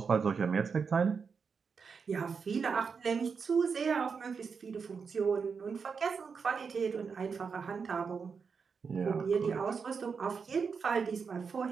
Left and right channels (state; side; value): quieter; left; 5.7 dB